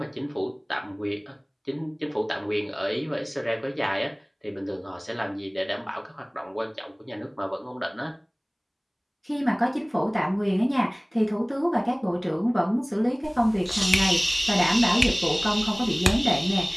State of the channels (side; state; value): both; identical; correlation 1.00